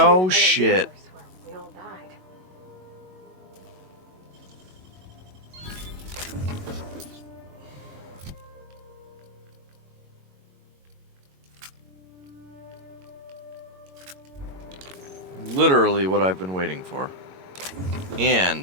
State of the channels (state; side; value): late; left; 22 ms